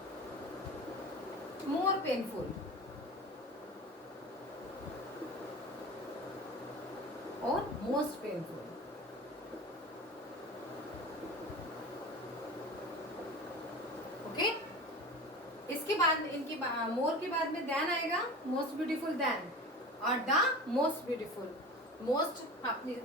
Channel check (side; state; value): both; normal; correlation 0.33